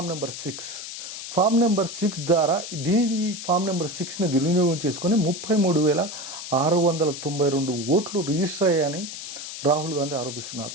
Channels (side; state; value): left; noise; hiss, 9 dB below the sound